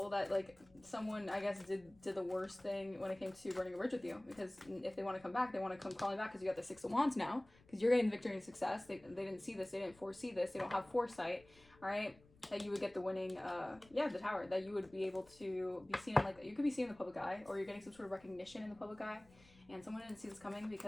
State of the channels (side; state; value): left; noise; rumble, 27 dB below the sound